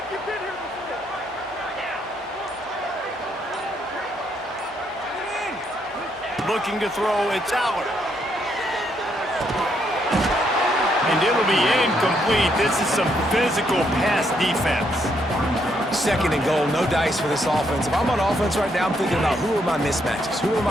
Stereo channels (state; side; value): normal; both; correlation 0.74